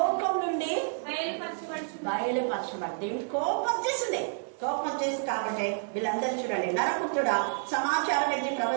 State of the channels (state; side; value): silent; left; digital silence